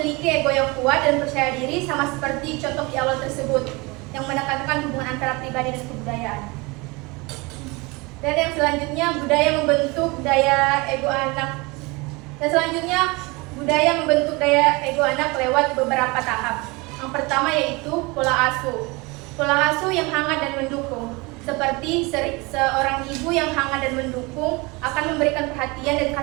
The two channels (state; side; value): quieter; left; 25.7 dB